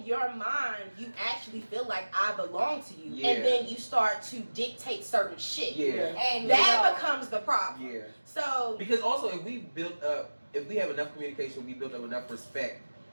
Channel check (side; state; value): both; inverted; correlation -1.00